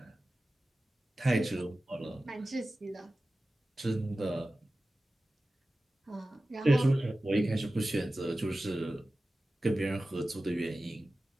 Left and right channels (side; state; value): both; normal; correlation 0.95